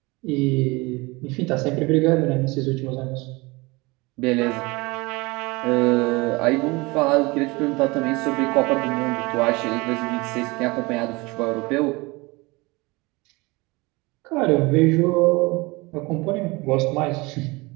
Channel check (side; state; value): left; quieter; 24.3 dB